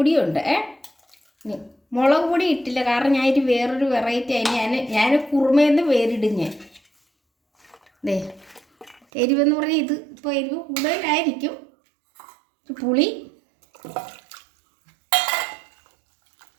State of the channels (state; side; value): drops out; left; at 9.0 s